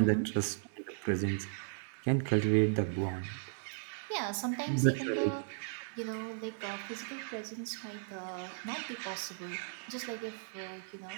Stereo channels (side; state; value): left; silent; digital silence